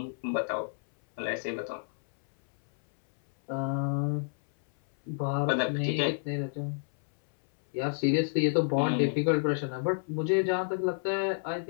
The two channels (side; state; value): right; silent; 58 dB below the other